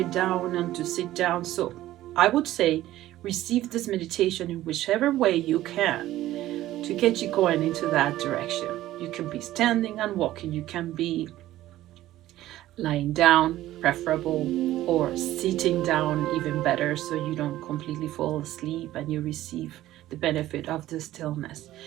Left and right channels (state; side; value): quieter; left; 14.8 dB